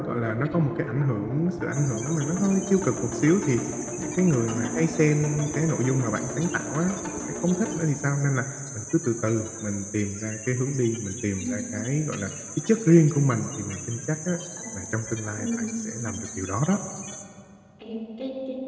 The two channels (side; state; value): both; identical; correlation 1.00